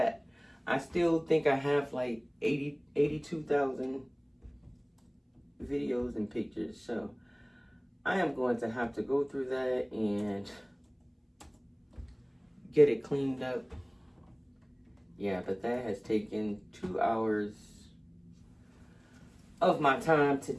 I still think I have like 82,000 videos and pictures. So I am going to have to go through that and get it cleaned up. Yeah, but that has taken 2 hours of my time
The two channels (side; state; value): both; identical; correlation 1.00